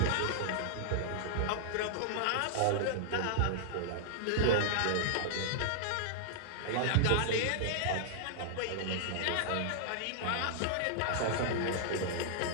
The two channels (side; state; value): both; different; correlation -0.01